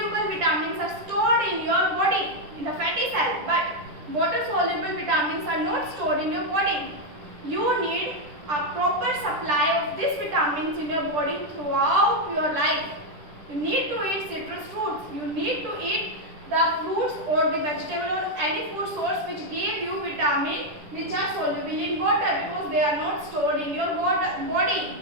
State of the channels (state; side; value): late; left; 10 ms